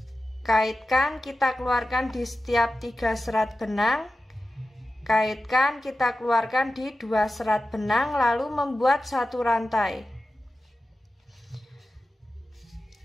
Kaitkan, kita keluarkan di setiap 3 serat benang. Kaitkan, kita keluarkan di 2 serat benang, lalu membuat 1 rantai.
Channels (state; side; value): normal; both; correlation 0.94